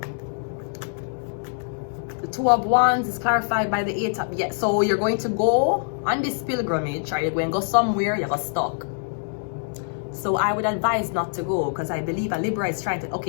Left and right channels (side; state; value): right; silent; digital silence